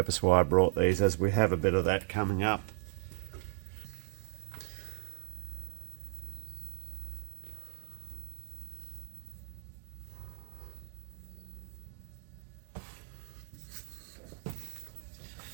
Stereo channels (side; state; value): left; silent; digital silence